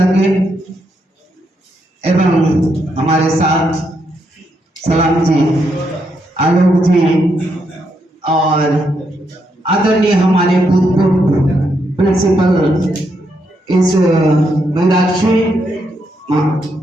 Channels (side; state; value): both; normal; correlation 0.79